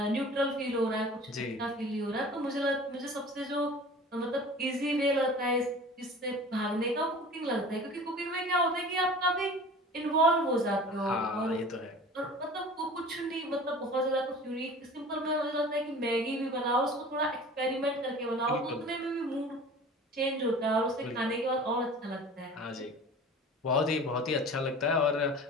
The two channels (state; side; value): normal; both; correlation 0.41